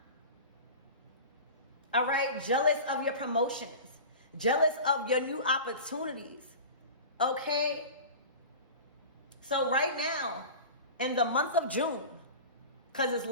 All right, jealous of your promotions, jealous of your new opportunities. Okay, so right now, in the month of June, because it's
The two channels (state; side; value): inverted; both; correlation -0.34